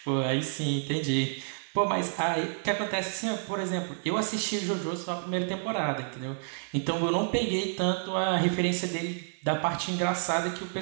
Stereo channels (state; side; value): silent; left; 58 dB below the other